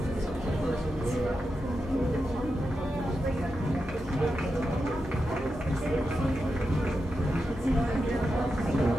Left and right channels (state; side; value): normal; both; correlation 0.88